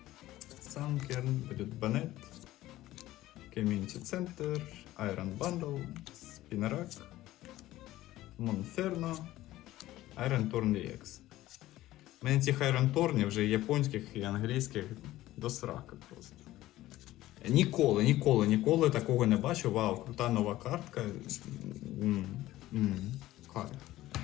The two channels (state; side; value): quieter; right; 15.7 dB